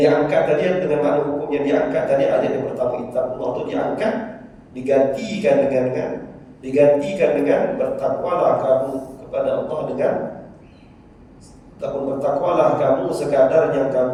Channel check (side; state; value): both; identical; correlation 1.00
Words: diangkat tadi dengan makna hukum yang diangkat tadi, ayat yang pertama ittaqullah itu diangkat, digantikan dengan bertakwalah kamu kepada Allah dengan ataupun bertakwalah kamu sekadar yang